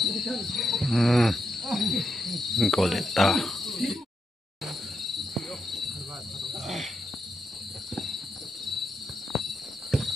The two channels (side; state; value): both; normal; correlation 0.84